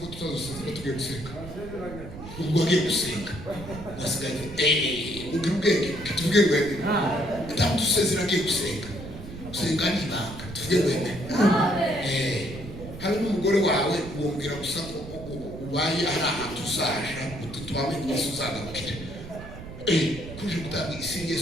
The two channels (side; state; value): right; noise; rumble, 12 dB below the sound